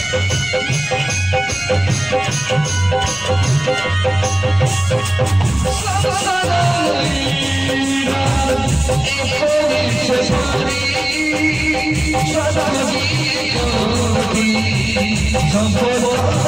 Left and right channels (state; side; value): noise; left; rumble, 22 dB below the sound